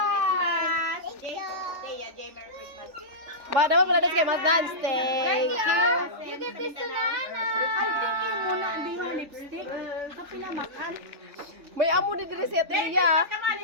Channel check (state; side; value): late; left; 3.4 ms